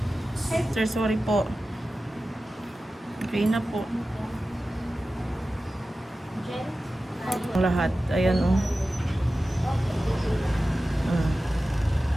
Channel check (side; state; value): both; normal; correlation 0.95